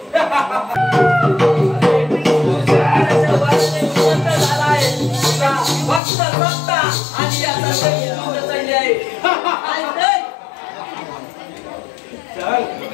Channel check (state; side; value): drops out; right; at 6.0 s